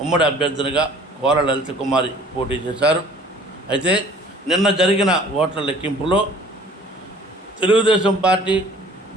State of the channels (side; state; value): both; normal; correlation 0.51